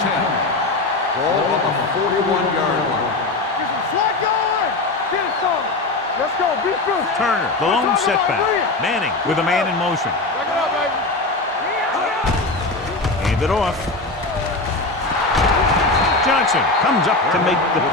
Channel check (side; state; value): right; quieter; 3.1 dB